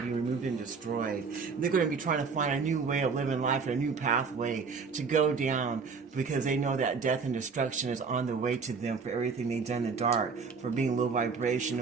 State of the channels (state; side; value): quieter; left; 5.2 dB